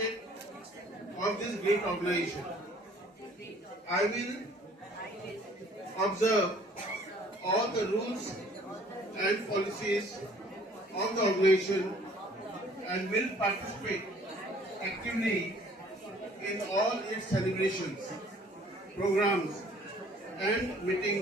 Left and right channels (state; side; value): normal; both; correlation 0.56